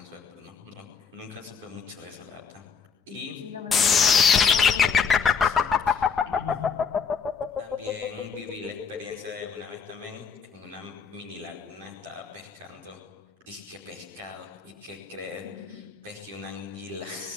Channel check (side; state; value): right; quieter; 6.0 dB